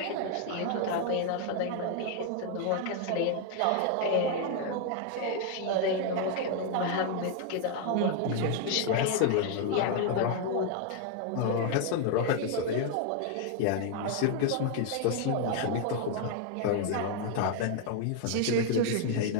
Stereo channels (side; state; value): both; different; correlation 0.00